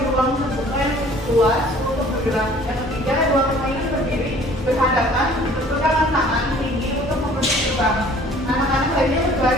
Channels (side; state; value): both; normal; correlation 0.52